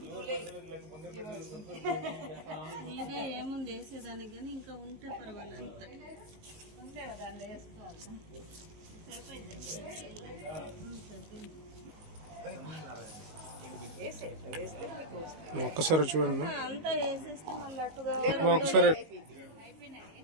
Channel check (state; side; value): late; left; 19 ms